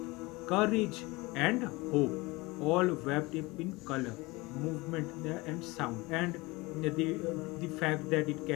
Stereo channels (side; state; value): right; quieter; 23.3 dB